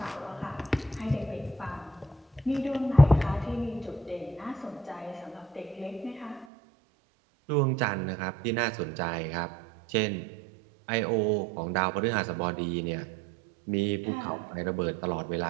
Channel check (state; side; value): drops out; left; at 6.5 s